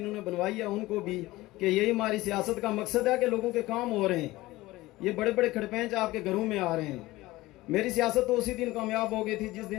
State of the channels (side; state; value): right; quieter; 18.6 dB